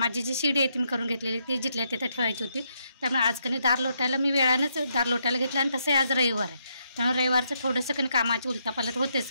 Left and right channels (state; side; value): inverted; both; correlation -0.78